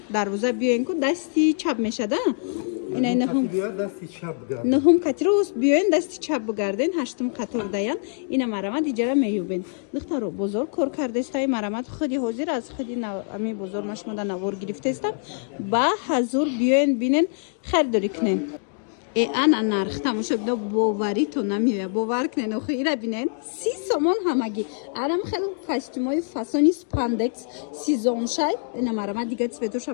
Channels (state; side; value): silent; right; 62 dB below the other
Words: дарвоза биёен ку дасти чап мешада инай 9-ум қатиро биёен дасти чап бигарден 8-ум қатор даян ина марамат иҷара меёбен духтаро бозор кор кардестаи марамат худи ҳозир аз худи ами бозор машмода навор гирифтестам ба ҳазур биёен бинен харидорӣ кунен ана нарх тамошобино боварито намеояд бовар кунен охи ира бинен 30 сомон ҳамагӣ арам хел костюмои фасони спандекс сезоншай ина марамат дига